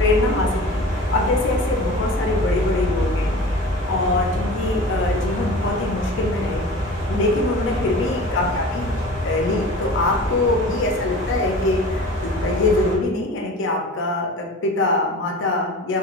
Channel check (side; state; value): both; normal; correlation 0.38